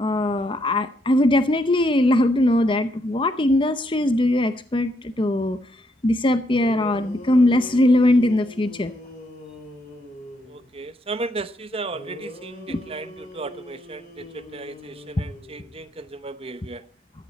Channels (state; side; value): normal; both; correlation 0.75